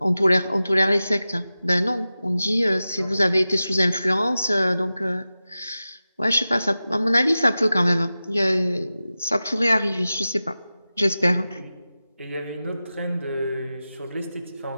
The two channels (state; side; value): inverted; both; correlation -0.94